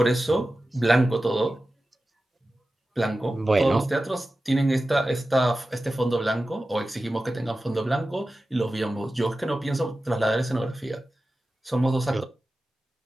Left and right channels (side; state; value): both; normal; correlation 0.94